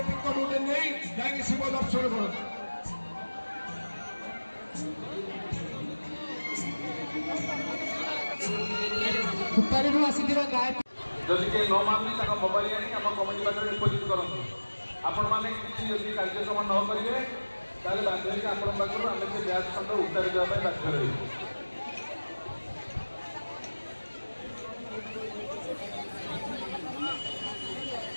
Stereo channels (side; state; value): both; inverted; correlation -1.00